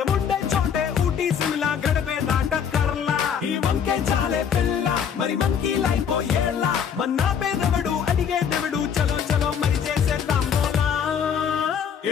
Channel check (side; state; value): right; quieter; 7.7 dB